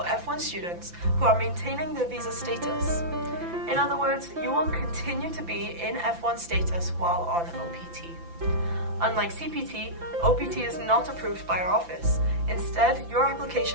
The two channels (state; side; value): late; left; 5.9 ms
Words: F1 students who are maintaining their visa status. In other words, you will continue to be in F1 status while on OPT. Unlike CPT, OPT is not approved by our office. Instead, your